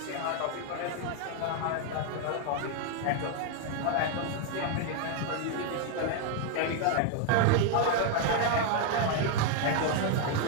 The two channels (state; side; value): different; both; correlation 0.00